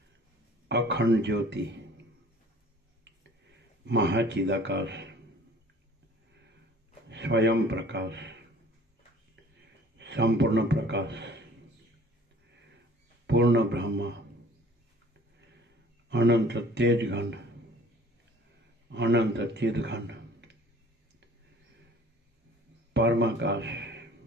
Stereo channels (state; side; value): normal; both; correlation 0.50